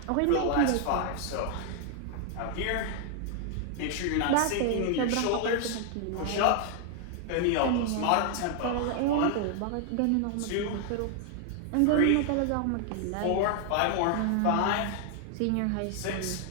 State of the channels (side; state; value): both; different; correlation 0.00